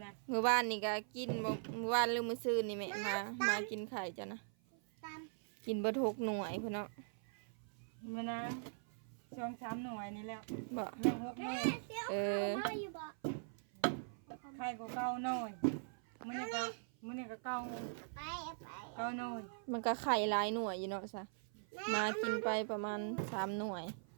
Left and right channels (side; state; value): left; silent; 50 dB below the other